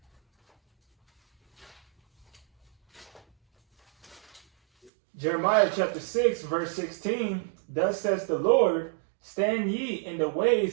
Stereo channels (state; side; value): drops out; left; at 4.9 s